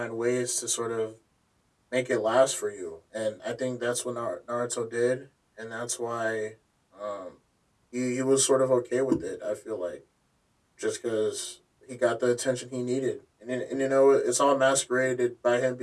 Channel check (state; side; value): identical; both; correlation 1.00